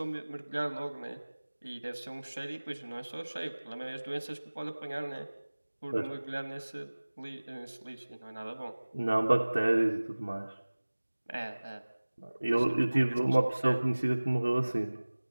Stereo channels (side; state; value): both; inverted; correlation -1.00